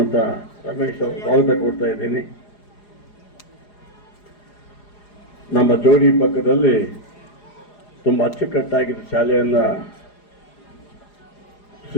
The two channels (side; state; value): right; late; 4.9 ms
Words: ರಮೇಶ್ ಅವರು ಸ್ವಾಗತ ಕೊಡ್ತಾ ಇದ್ದೀನಿ. ನಮ್ಮ ಜೋಡಿ ಪಕ್ಕದಲ್ಲಿ ತುಂಬ ಅಚ್ಚುಕಟ್ಟಾಗಿದ್ದ ಶಾಲೆಯನ್ನು